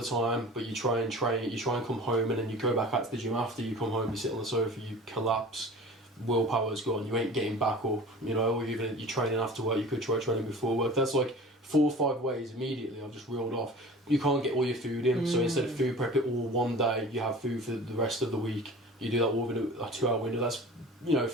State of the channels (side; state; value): both; normal; correlation 0.40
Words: time, but you try and train, you try and come home and then you go back out to the gym after you come home, you sit on the sofa, you collapse. Willpower's gone, you ain't getting back up, or even if you're training after work, you could try training before work. That's like 4 or 5 ways immediately I've just reeled off. You can't get all your food in, so instead of food prep it all one day, you have food for the rest of the week. You do that all within a 2-hour window. That's